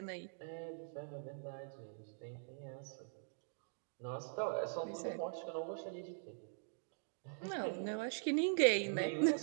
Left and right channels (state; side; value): silent; left; digital silence